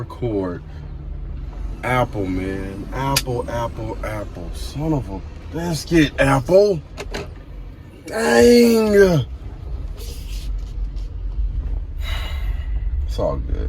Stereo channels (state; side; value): identical; both; correlation 1.00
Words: Apple, man. Apple. Son of a biscuit, Apple. Dang. It's all